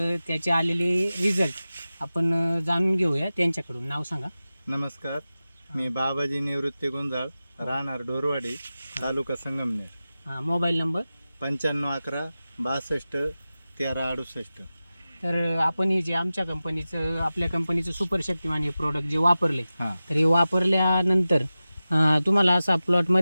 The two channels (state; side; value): inverted; both; correlation -0.95